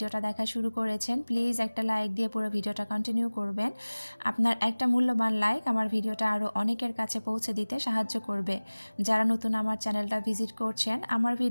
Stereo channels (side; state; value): both; inverted; correlation -1.00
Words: দেখা শুরু করেছেন প্লিজ একটা লাইক দিয়ে পুরো ভিডিওটা কন্টিনিউ করবেন। আপনার একটা মূল্যবান লাইক আমার ভিডিওটা আরও অনেকের কাছে পৌঁছে দিতে সাহায্য করবে। যারা নতুন আমার চ্যানেলটা ভিজিট করছেন, আমার